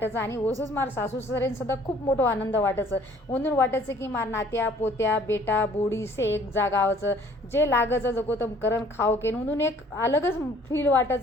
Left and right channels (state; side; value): normal; both; correlation 0.56